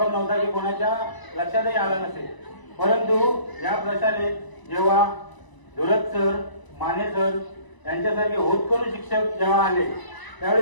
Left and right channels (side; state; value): right; late; 1.0 ms